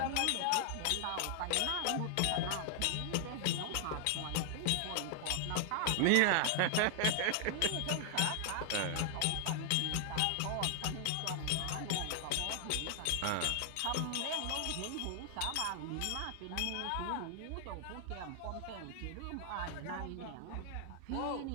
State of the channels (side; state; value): both; different; correlation 0.00